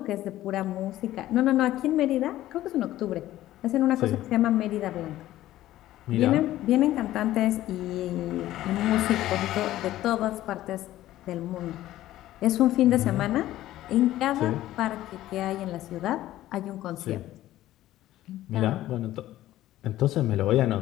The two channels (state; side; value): quieter; right; 14.5 dB